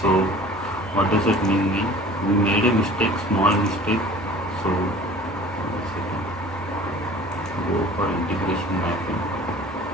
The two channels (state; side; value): normal; both; correlation 0.45